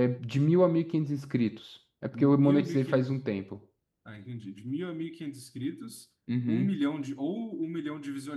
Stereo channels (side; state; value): both; identical; correlation 1.00